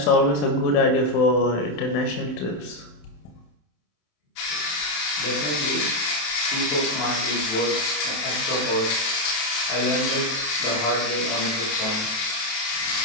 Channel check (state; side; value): late; right; 27 ms